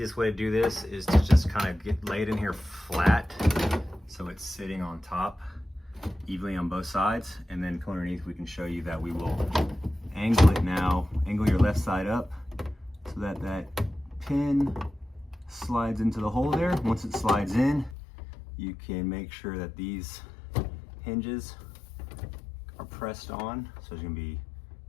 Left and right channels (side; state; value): right; drops out; at 17.9 s